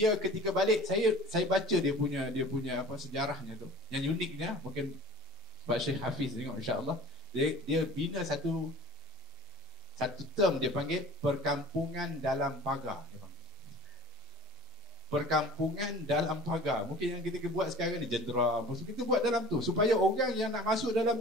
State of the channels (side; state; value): both; normal; correlation 0.44